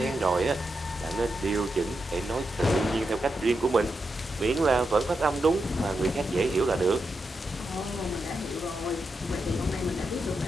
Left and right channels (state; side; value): normal; both; correlation 0.86